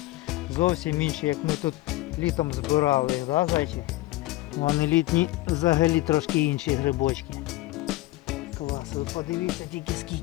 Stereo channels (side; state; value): right; quieter; 18.4 dB